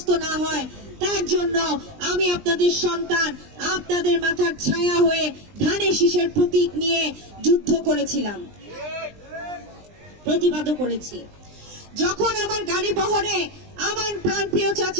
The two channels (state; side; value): late; left; 20 ms